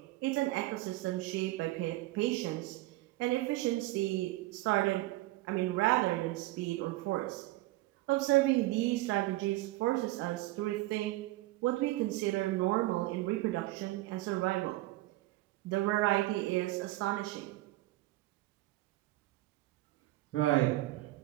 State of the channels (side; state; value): left; quieter; 18.2 dB